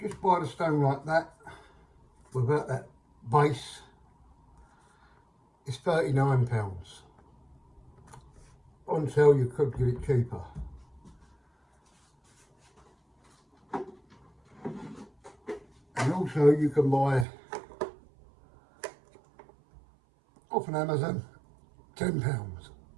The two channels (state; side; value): drops out; left; at 17.2 s